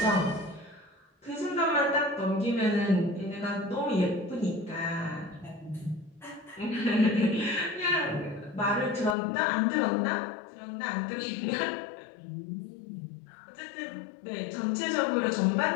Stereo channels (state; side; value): drops out; right; at 9.2 s